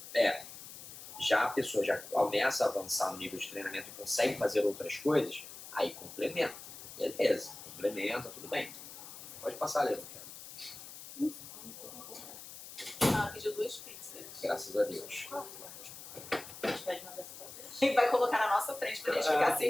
já a pessoa já começa a avançar no nível de treinamento e consegue fazer outras coisas, aí complementa. Beleza, complementa, tudo bem. Pode passar, Leandro. Pediu 2 pizzas. Graças a Deus. A gente pode mandar essa pra E vai colocar na nossa frente pra gente ficar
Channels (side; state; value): left; noise; hiss, 13 dB below the sound